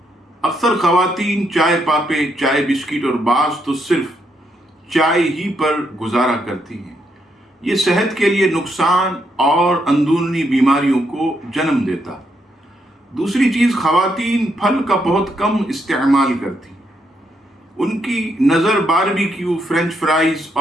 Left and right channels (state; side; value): normal; both; correlation 0.78